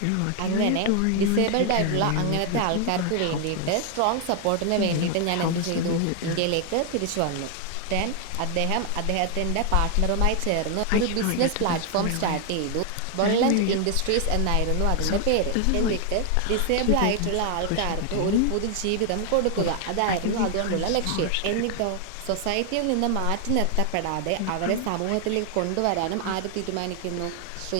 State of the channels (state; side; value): different; both; correlation 0.00